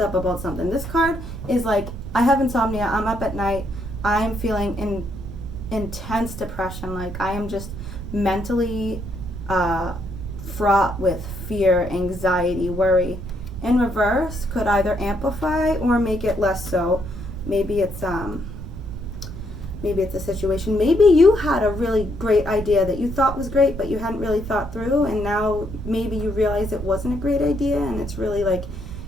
up about something. This card is like, I have insomnia, I'm up at night, I'm feeling intense depression, like I am just mentally fraught with fear, anxiety, worry. In reverse could either amplify or make it less so. Maybe it's a situation. Maybe you had a really great idea that you thought was great, but you hadn't really thought through, and now maybe you realize it wasn't a great idea, and it's really like,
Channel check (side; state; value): right; noise; rumble, 9 dB below the sound